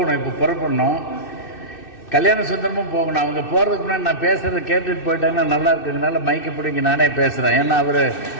இப்போ புறப்படணும். கல்யாண சுந்தரமும் போகணும். அவங்க போகிறதுக்கு முன்னாடி நான் பேசுகிறத கேட்டுட்டு போயிட்டாங்கன்னா நல்லா இருக்குதுனால மைக்கை பிடிங்க நானே பேசுகிறேன். ஏன்னா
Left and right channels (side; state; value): right; late; 2.6 ms